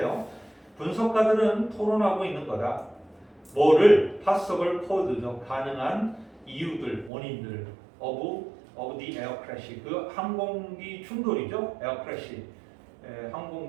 분석가들은 토론하고 있는 거다. 뭐를 possible cause죠. 가능한 이유들, 원인들 of of the air crash. 그 항공기 충돌이죠. air crash.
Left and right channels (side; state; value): left; drops out; at 7.1 s